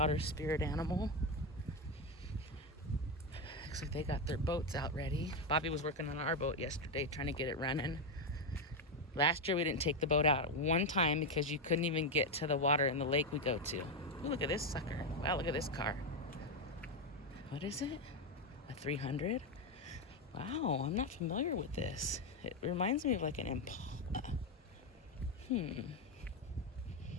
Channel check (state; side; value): normal; both; correlation 0.08